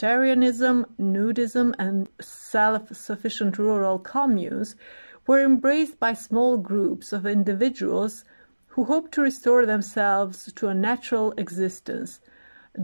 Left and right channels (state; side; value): inverted; both; correlation -1.00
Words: nudism, and self-sufficient rural communes, were embraced by small groups of individuals who hoped to restore themselves to a natural existence.